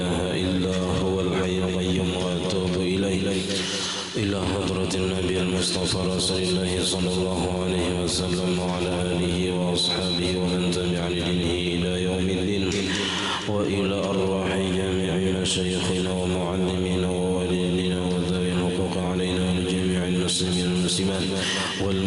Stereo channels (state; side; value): identical; both; correlation 1.00